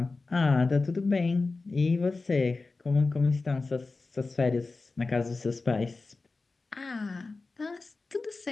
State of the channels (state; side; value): quieter; right; 3.7 dB